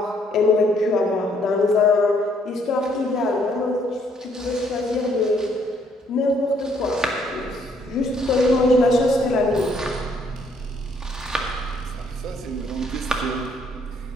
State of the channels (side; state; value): both; normal; correlation 0.67